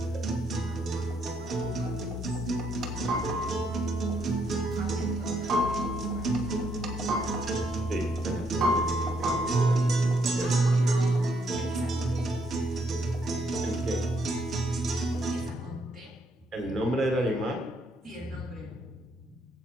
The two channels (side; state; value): both; normal; correlation 0.73